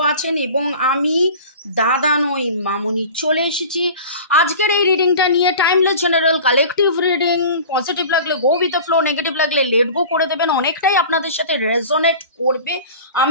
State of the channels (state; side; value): inverted; both; correlation -0.38